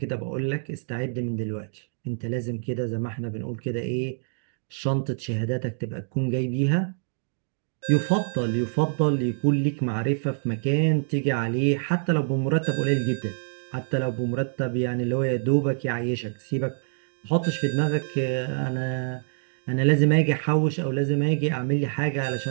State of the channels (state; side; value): silent; left; digital silence